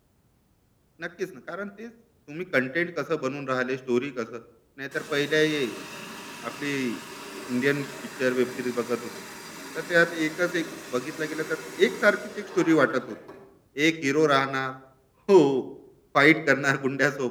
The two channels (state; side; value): identical; both; correlation 1.00